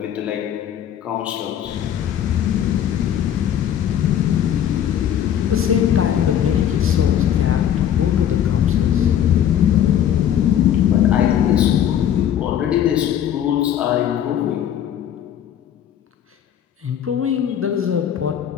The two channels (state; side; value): quieter; right; 10.0 dB